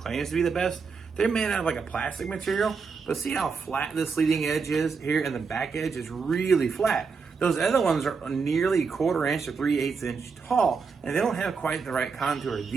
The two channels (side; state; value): left; quieter; 5.2 dB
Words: to be the best. They're made out of like a plastic material, but see how flat this leading edge is here, and the back edge is really flat. Those other ones are nearly a quarter inch to 3/8 inch tall, and they don't have quite the right contour.